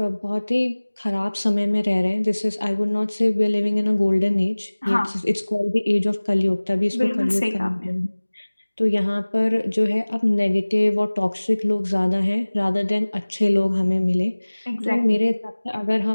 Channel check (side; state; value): both; inverted; correlation -1.00